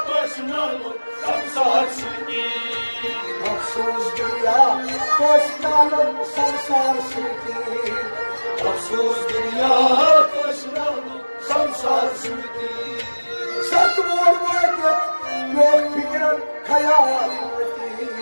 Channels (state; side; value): inverted; both; correlation -1.00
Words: qismano samsar suti. Afsus dünya, qismano samsar suti. Afsus dünya qismano samsar suti. Satmur vakit, yok fikran, hayal muti.